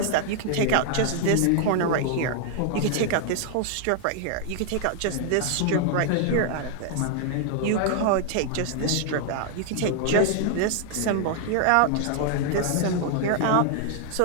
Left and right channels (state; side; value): different; both; correlation 0.00